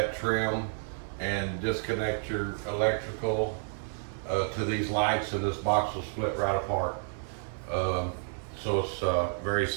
trim and disconnect your electrical to these lights, and this box will split right apart. So it's very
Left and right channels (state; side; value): silent; left; 57 dB below the other